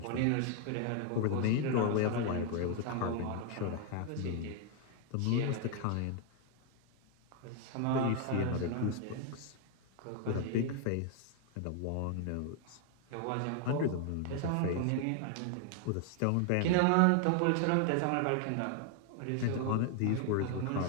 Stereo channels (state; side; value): different; both; correlation 0.00